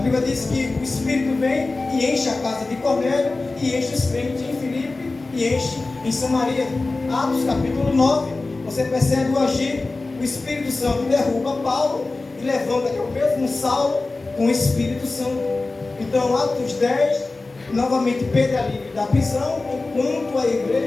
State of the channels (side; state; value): right; quieter; 3.4 dB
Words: Bíblia diz que o Espírito vem e enche a casa de Cornélio, e enche os crentes em Filipe, e enche em Samaria. Atos capítulo 9, você percebe o agir, o Espírito Santo derruba Paulo e levanta que é o mesmo Saulo com o Espírito Santo. Então Atos 10, novamente Pedro é livre da prisão, enquanto a